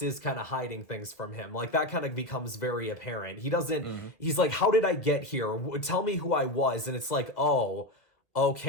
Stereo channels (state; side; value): late; right; 1.6 ms